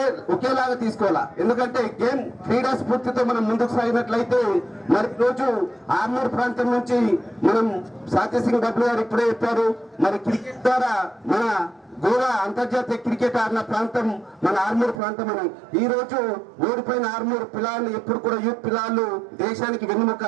ఒకేలాగా తీసుకోవాలా. ఎందుకంటే గేమ్ క్రీడా స్ఫూర్తితో మనం ముందుకు సాగినట్లయితే మరి రోజు ఆర్మూర్ ప్రాంతం నుంచి మనం సంజయ్ సింగ్ బబ్లు గారు ఇప్పుడే చెప్పారు, మరి క్రికెట్ ద్వారా మన గోవా అంతర్జాతీయ క్రికెట్ ఆడిన ప్రాంతం మన ఆర్మూర్ ప్రాంతం అని. ఈ రోజు ఓడిపోయిన ఆర్మూర్ పిల్లలు ఎప్పుడు కూడా యూత్ పిల్లలు దేశానికి వెన్నుముక.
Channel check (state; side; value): drops out; left; at 15.0 s